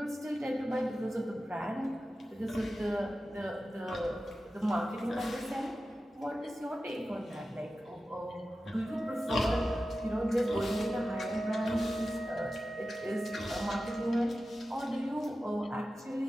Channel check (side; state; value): both; normal; correlation 0.93